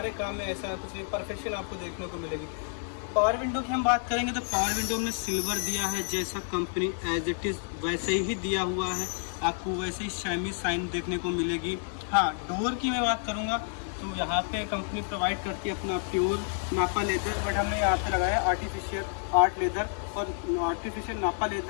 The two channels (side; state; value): right; silent; 58 dB below the other